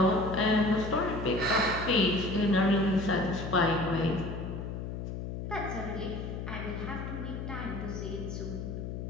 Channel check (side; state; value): left; noise; hum, 6 dB below the sound